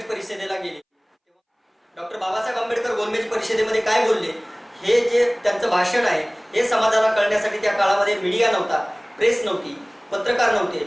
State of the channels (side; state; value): both; identical; correlation 1.00